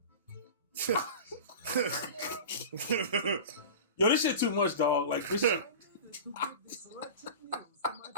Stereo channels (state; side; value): inverted; both; correlation -0.32